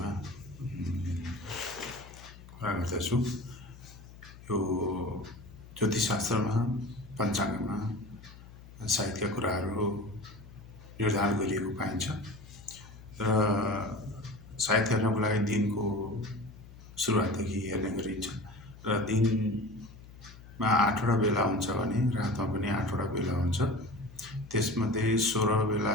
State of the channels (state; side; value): noise; left; hum, 18 dB below the sound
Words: कुरा गर्दछु। यो ज्योतिषशास्त्रमा, पञ्चाङ्गमा साहित्यका कुराहरू निर्धारण गरिएको पाइन्छ र साहित्य हेर्नको लागि दिनको सुरुवातदेखि हेर्ने गरिन्छ र दिनमा 8वटा बेला हुन्छ भने रातमा पनि 8वटा बेला हुन्छ। त्यसमध्ये 16